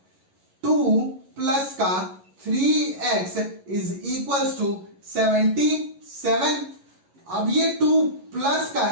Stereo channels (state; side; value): late; left; 11 ms